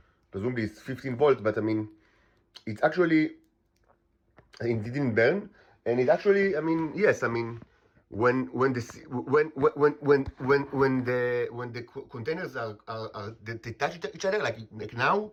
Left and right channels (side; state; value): both; identical; correlation 1.00